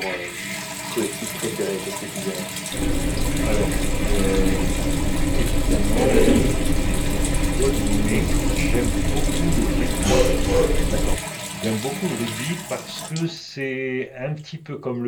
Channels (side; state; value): both; identical; correlation 1.00